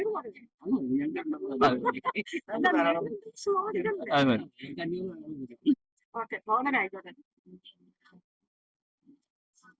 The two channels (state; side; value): identical; both; correlation 1.00